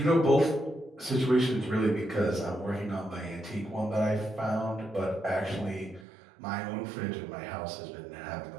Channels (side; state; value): left; drops out; at 6.1 s